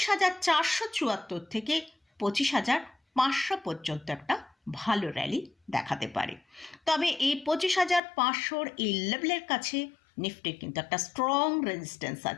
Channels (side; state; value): right; drops out; at 8.0 s